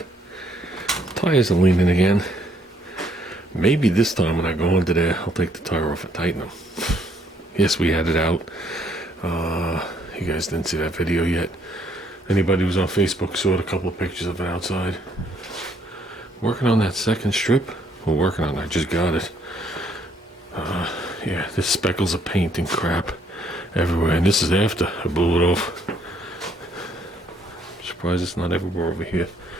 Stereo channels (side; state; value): both; normal; correlation 0.67